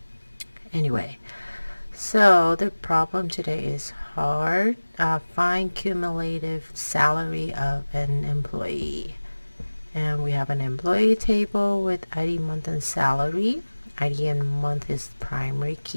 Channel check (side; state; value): both; inverted; correlation -1.00